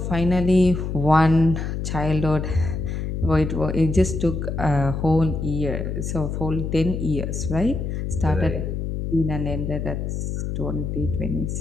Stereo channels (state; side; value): noise; left; hum, 3 dB below the sound